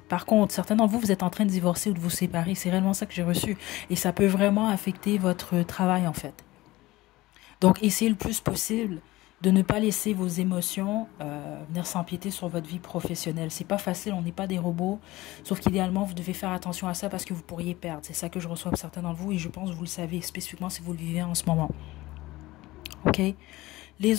contre, certains d'entre vous, vous êtes en train de divorcer ou de vous séparer. C'est réellement ça que j'ai reçu. Et ça peut vraiment affecter votre travail, en fait. Donc, essayez le plus possible de ne pas laisser vos émotions venir s'empiéter sur votre vie professionnelle. C'est pas facile, on n'est pas des robots. Sauf qu'idéalement, vous devez faire attention à ça parce que vous pourriez perdre. C'est ça que je reçois pour certains d'entre vous et je pense que vous le savez spécifiquement si vous le vivez en ce moment. Ok?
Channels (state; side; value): quieter; right; 18.7 dB